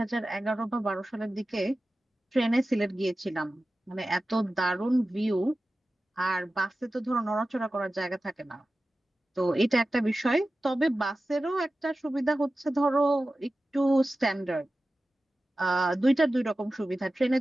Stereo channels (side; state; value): both; normal; correlation 0.95